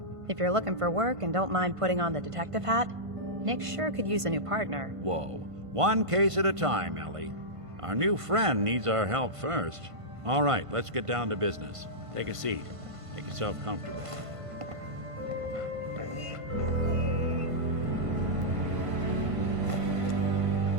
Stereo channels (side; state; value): left; late; 1.5 ms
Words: if you're looking for work and don't mind putting on the detective hat, Nick sure could use a new partner. Whoa. One case at a time, Ellie. Our new friend needs our help first. All right, let's get down to business. Take a seat. Make yourself comfortable.